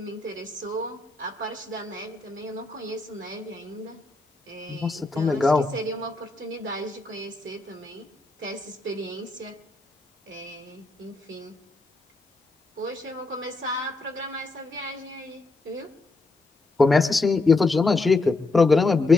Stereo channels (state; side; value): quieter; right; 3.3 dB